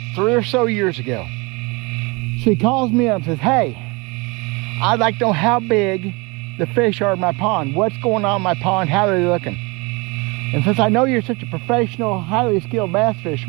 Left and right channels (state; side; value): quieter; left; 27.3 dB